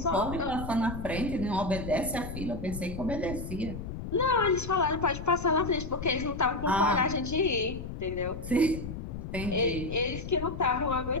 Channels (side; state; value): left; noise; rumble, 8 dB below the sound